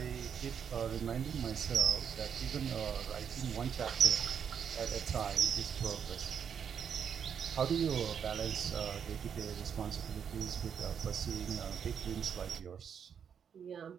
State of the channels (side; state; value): left; quieter; 7.6 dB